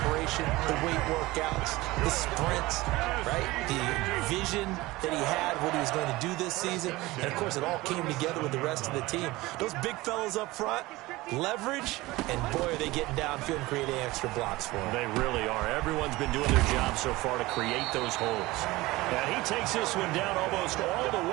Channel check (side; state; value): left; quieter; 19.9 dB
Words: the weight workouts, the sprints, right? The vision that he had, what he was going to do this season. And, of course, it all came together with the rest of the team. Those big fellas up front, leverage, and, boy, are they getting downfield and creating extra blocks for him. They really are. Everyone's been doing their job so far to create those holes. And he takes this one down almost all the